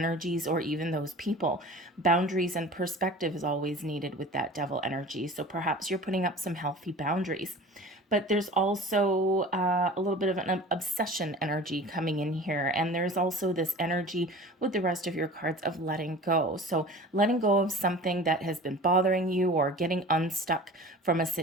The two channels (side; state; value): both; normal; correlation 0.39